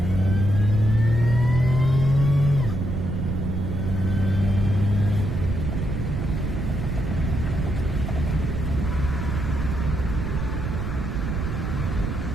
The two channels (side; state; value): right; noise; rumble, 2 dB below the sound